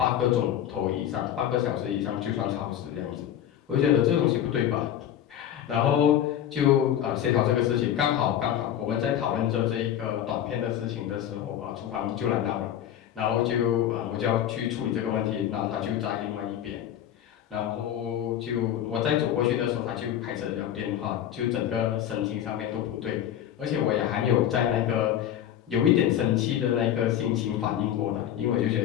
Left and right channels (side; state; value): right; quieter; 10.7 dB